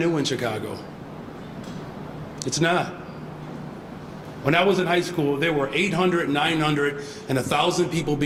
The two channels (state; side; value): identical; both; correlation 1.00